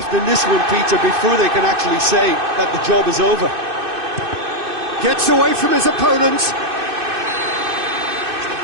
in this one, Peter, before they can actually say that the job is over. Gets away from his opponents.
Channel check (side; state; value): left; late; 2.6 ms